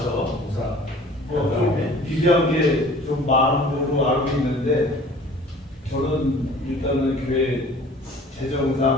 공사. 좀 비교한 게 좀 많은 걸로 알고 있는데, 저는 일단은 교회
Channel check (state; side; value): normal; both; correlation 0.48